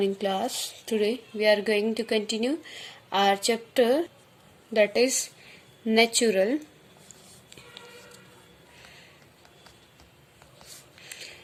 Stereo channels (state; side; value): identical; both; correlation 1.00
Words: class. Today we are going to continue our chapter that is natural